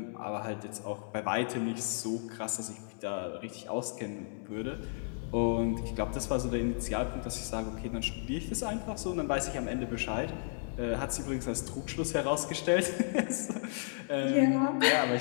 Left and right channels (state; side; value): silent; right; 55 dB below the other